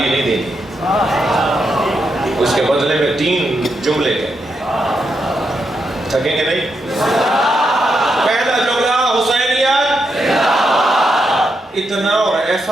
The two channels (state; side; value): normal; both; correlation 0.82